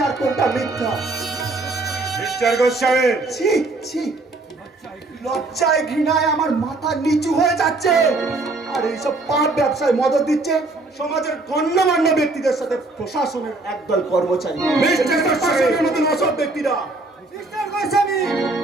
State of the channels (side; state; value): left; quieter; 3.1 dB